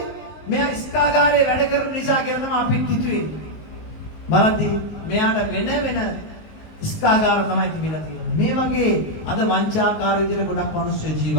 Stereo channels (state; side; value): late; right; 19 ms